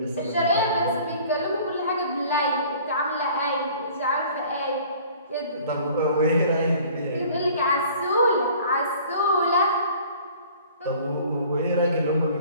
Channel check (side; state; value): both; inverted; correlation -0.50